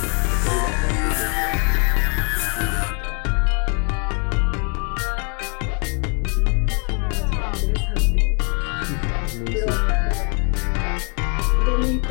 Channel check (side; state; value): right; quieter; 37.8 dB